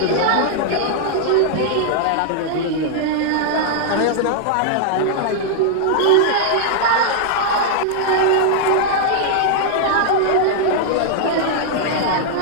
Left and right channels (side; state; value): both; different; correlation -0.01